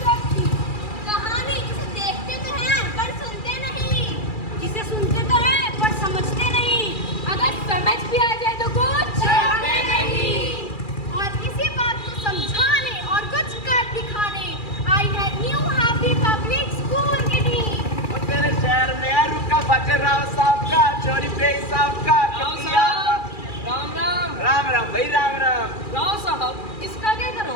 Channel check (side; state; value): right; late; 2.4 ms